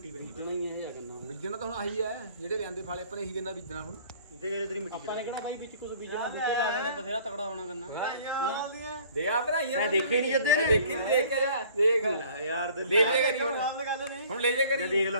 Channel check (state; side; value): inverted; both; correlation -0.52